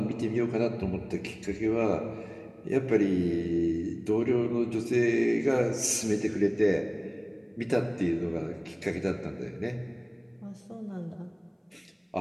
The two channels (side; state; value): both; identical; correlation 1.00